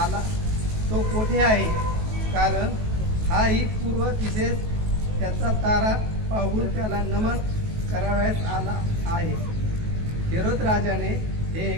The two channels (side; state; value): left; late; 19 ms